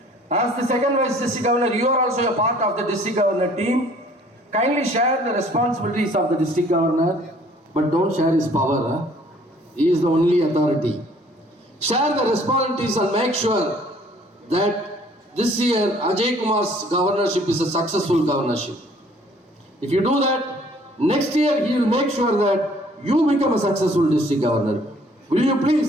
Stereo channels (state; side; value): normal; both; correlation 0.57